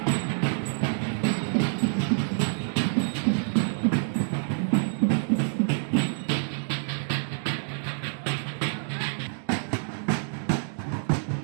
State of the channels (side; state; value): left; silent; digital silence